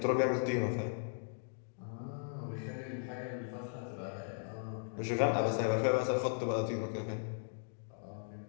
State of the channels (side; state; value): right; silent; digital silence